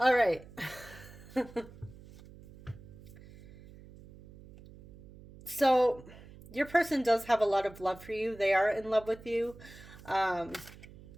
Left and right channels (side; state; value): right; noise; hum, 19 dB below the sound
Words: right. So your person does have a lot of love for you. They are in love with you. Um,